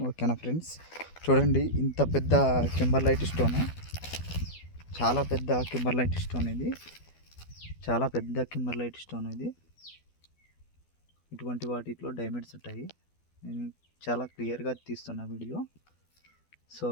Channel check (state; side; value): late; right; 12 ms